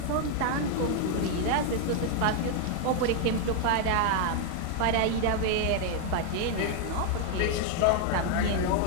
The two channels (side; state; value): both; different; correlation 0.00